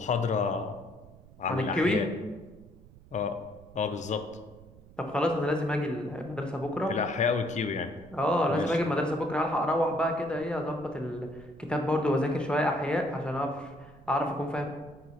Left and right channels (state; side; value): noise; right; rumble, 22 dB below the sound